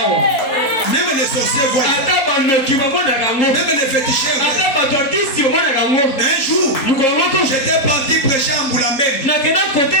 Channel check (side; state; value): right; late; 4.1 ms